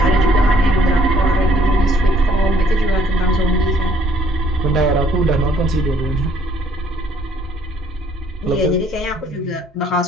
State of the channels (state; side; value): normal; both; correlation 0.62